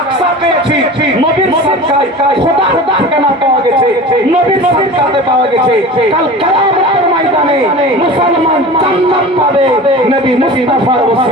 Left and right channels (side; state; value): both; normal; correlation 0.35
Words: আকসা পেয়েছি নবীর সাদকায় খোদার ঠিকানা পাওয়া গেছে নবীর সাদকাতে পাওয়া গেছে কাল কিয়ামতের ময়দানে মুসলমান জান্নাত পাবে নবী মুস্তাফার